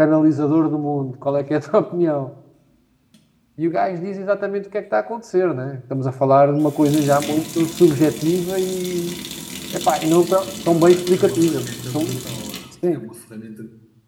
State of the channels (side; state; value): both; identical; correlation 1.00